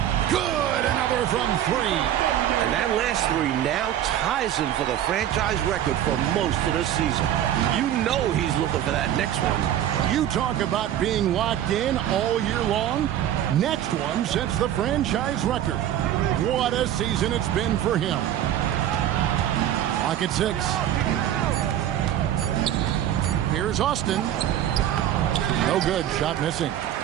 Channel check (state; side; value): quieter; left; 11.3 dB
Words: Good, another from 3. And that last 3 now ties him for the franchise record for most of the season. You know he's looking for that next one. You talk about being locked in all year long. Next one sets the franchise record. What a season it's been for him. Lock at 6. Here's Austin. No good. Shot missing.